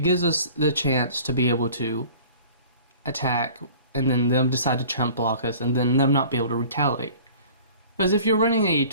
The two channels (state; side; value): inverted; both; correlation -0.46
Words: gives us the chance to be able to attack and then them decide to chump block us and then them not be able to retaliate. Because if you're running a